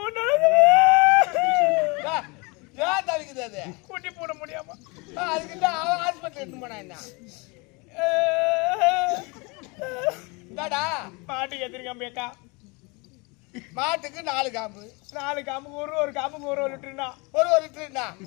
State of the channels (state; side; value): quieter; right; 28.3 dB